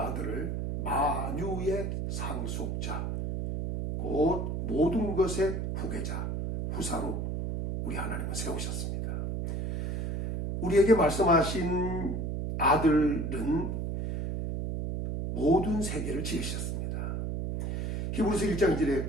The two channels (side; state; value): right; noise; hum, 2 dB below the sound